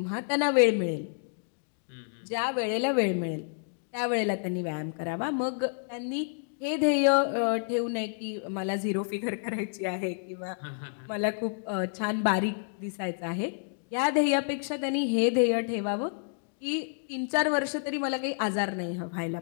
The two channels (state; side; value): silent; right; digital silence